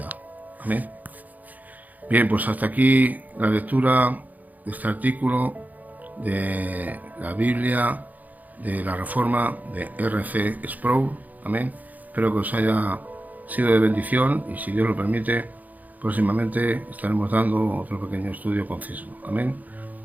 Amén. Bien, pues hasta aquí la lectura de este artículo de la Biblia de la Reforma de R.C. Sproul. Amén. Espero que os haya sido de bendición y, si Dios lo permite, próximamente estaremos dando otro pequeño estudio conciso. Amén.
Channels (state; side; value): late; left; 0.080 ms